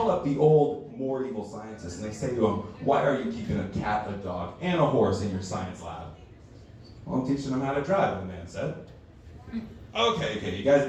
up the old, more evil scientists, and they say to him, why are you keeping a cat, a dog, and a horse in your science lab? Well, I'm teaching them how to drive, the man said. Okay, you guys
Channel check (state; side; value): identical; both; correlation 1.00